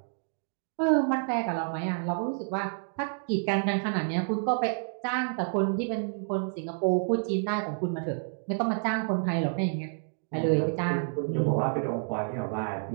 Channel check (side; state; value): left; silent; digital silence